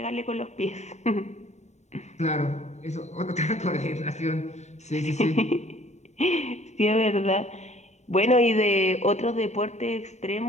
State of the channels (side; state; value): right; late; 0.33 ms